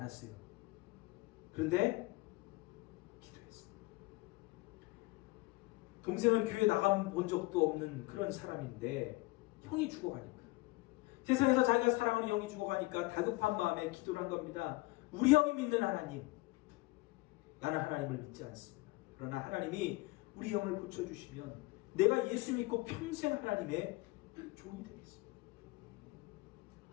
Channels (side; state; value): right; quieter; 22.1 dB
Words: 그런데 기도했어요. 동생은 교회 나가본 적도 없는 그런 사람인데 형이 죽어가니까, 세상에서 자기가 사랑하는 형이 죽어가니까 다급한 마음에 기도를 한 겁니다. 우리 형이 믿는 하나님, 나는 하나님을 믿지 않습니다. 그러나 하나님이 우리 형을 고쳐주시면 내가 예수 믿고 평생 하나님의 종이 되겠습니다.